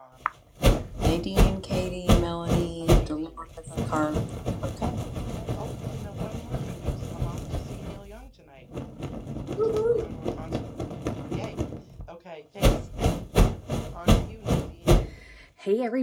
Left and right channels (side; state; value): both; identical; correlation 1.00